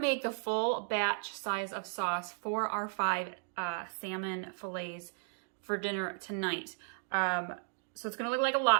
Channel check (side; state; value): left; silent; 55 dB below the other